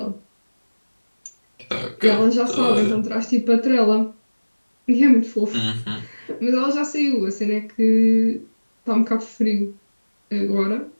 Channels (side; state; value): both; inverted; correlation -1.00